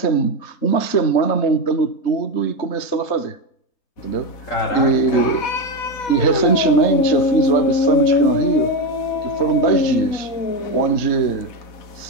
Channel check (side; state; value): right; late; 4.1 ms